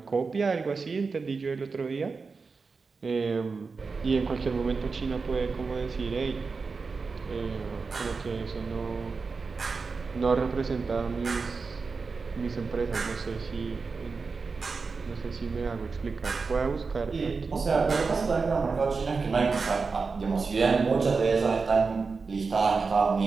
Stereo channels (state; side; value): quieter; left; 4.6 dB